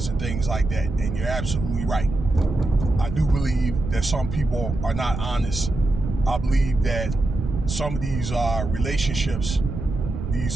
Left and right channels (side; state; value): right; noise; rumble, 6 dB below the sound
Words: and things like that. And you're absolutely right. I do believe that some people are not honest. I believe that some of these relationships,